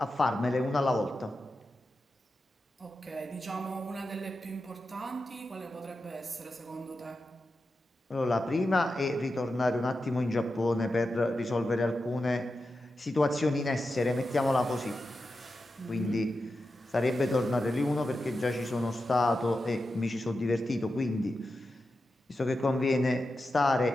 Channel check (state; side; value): normal; both; correlation 0.90